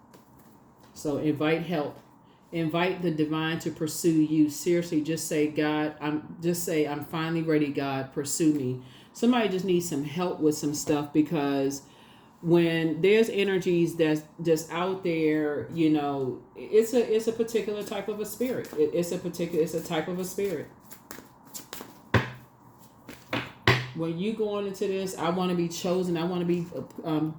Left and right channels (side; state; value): both; identical; correlation 1.00